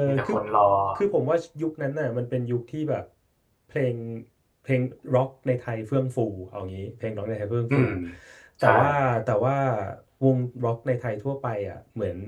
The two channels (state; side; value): identical; both; correlation 1.00